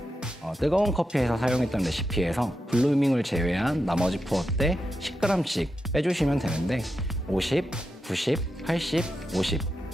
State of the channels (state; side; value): normal; both; correlation 0.87